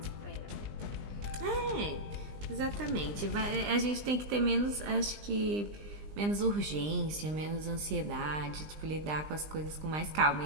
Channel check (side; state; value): left; late; 20 ms